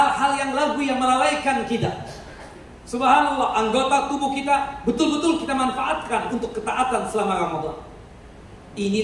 yang lagu yang melalaikan kita. Subhanallah, anggota tubuh kita betul-betul kita manfaatkan untuk ketaatan selama Ramadan.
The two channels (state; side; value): identical; both; correlation 1.00